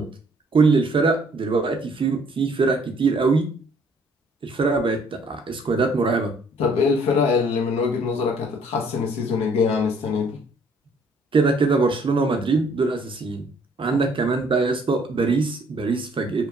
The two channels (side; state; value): both; normal; correlation 0.62